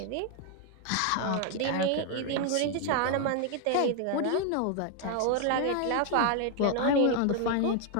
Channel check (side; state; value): both; different; correlation 0.00